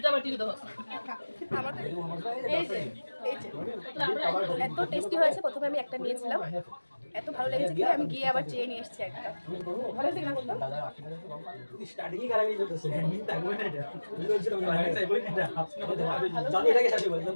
এত টেস্টি হয়েছে, প্রথমে আমি একটা নিয়েছিলাম, এত ভালো লেগেছে কি আমি গিয়ে আবার চেয়ে নিয়ে এসেছি একটা। ভালো হয়েছে কিনা বলতো?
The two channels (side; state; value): both; inverted; correlation -1.00